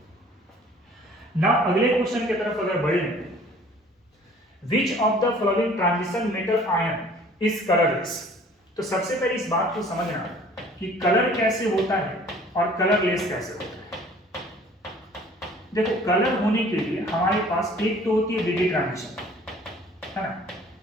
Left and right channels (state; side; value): normal; both; correlation 0.52